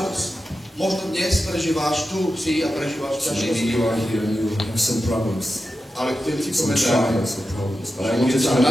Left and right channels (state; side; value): normal; both; correlation 0.91